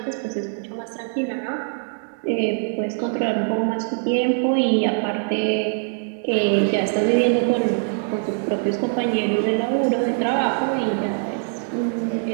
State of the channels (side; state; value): left; silent; 64 dB below the other